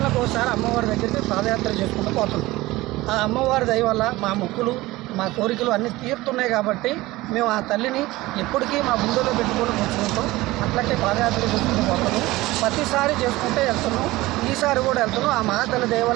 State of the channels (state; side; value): quieter; left; 19.1 dB